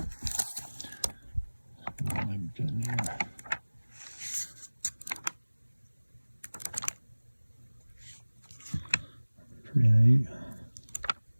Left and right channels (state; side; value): inverted; both; correlation -1.00